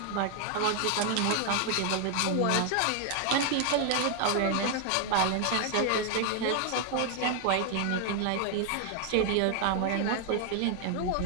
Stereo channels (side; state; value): both; different; correlation 0.00